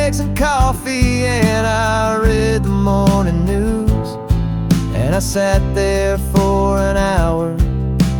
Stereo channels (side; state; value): both; identical; correlation 1.00